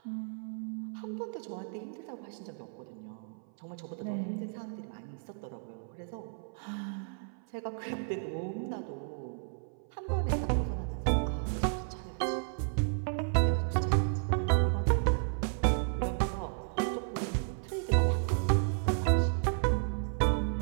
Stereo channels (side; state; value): left; silent; 56 dB below the other